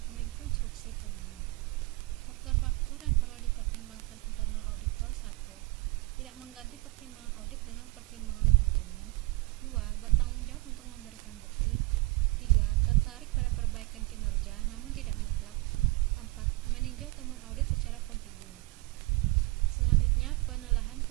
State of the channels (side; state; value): left; quieter; 22.2 dB